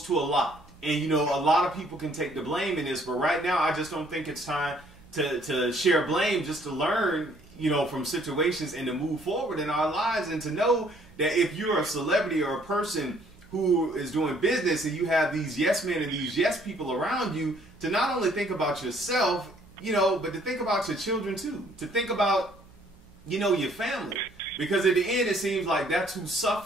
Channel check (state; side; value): normal; both; correlation 0.62